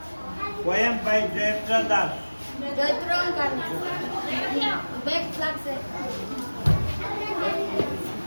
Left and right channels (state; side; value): inverted; both; correlation -1.00